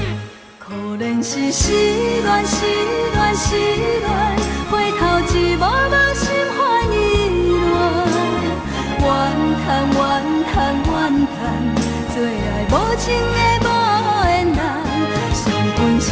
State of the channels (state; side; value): identical; both; correlation 1.00